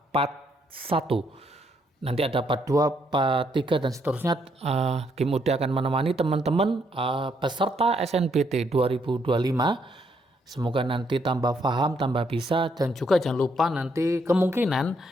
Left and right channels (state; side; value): normal; both; correlation 0.73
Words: part 1. Nanti ada part 2, part 3 dan seterusnya. Kim Ude akan menemani teman-teman peserta SNBT 2025. Semoga nanti tambah paham, tambah bisa, dan juga jangan lupa nanti kemungkinan